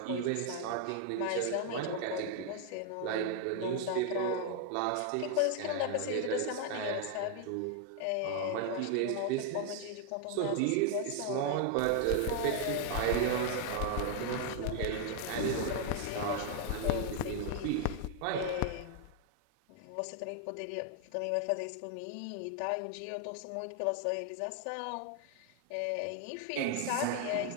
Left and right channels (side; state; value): both; different; correlation 0.00